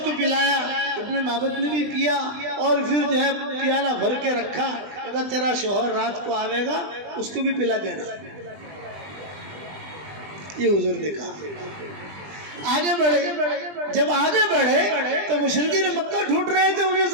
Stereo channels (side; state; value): left; late; 20 ms